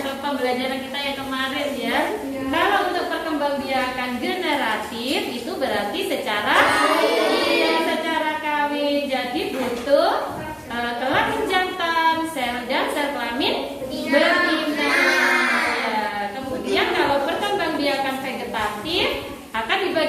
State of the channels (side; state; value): both; identical; correlation 1.00